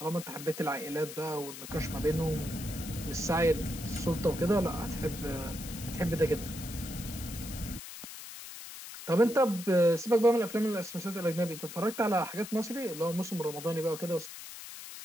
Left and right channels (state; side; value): noise; left; hiss, 12 dB below the sound